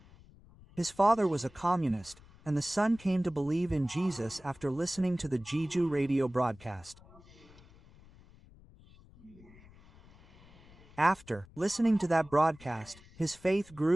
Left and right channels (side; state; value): left; noise; rumble, 24 dB below the sound